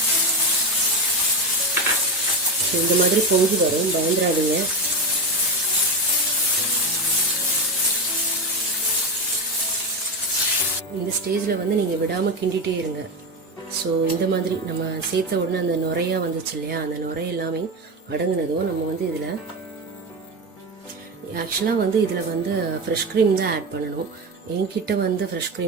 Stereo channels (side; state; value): both; normal; correlation 0.18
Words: ஸோ இந்த மாதிரி பொங்கி வரும், பயந்துடாதீங்க. இந்த ஸ்டேஜில் வந்து நீங்கள் விடாமல் கிண்டிகிட்டே இருங்க. ஸோ இந்த மாதிரி நம்ம சேர்த்த உடனே அந்த நுரையாக வந்துச்சு இல்லையா, அந்த நுரை எல்லாமே அடங்குனதும் நம்ம வந்து இதில் ஆக்சுவலாக வந்து இதில் வந்து ஃப்ரெஷ் க்ரீம் தான் ஆட் பண்ணணும். என்கிட்ட வந்து ஃப்ரெஷ்